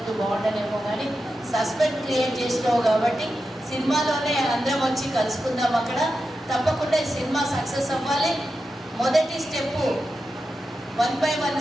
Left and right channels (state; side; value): normal; both; correlation 0.90